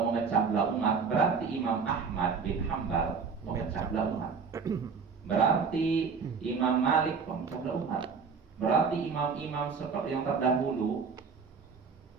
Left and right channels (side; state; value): left; quieter; 5.6 dB